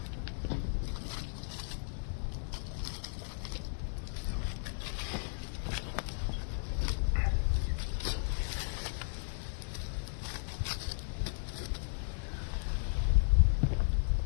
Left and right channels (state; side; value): silent; right; digital silence